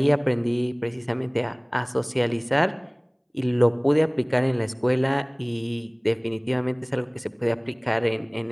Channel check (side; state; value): both; identical; correlation 1.00